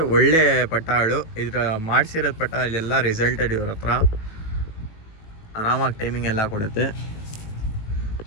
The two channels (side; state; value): right; late; 18 ms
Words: ಒಳ್ಳೆ ಪಟ್ಟಗಳು, ಇದರ ಮಾಡಿಸಿರೋದು ಪಟ್ಟ ಎಲ್ಲ ರಿಸಲ್ಟೆಡ್ ಇವ್ರ ಹತ್ರ. ಆರಾಮಾಗಿ ಟೈಮಿಂಗ್ ಎಲ್ಲ ಕೊಡುತ್ತೆ.